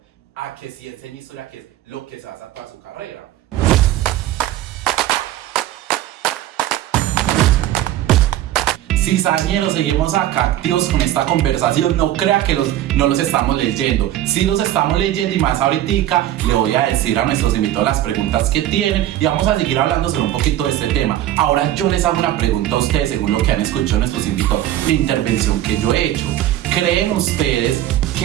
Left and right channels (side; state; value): left; quieter; 13.1 dB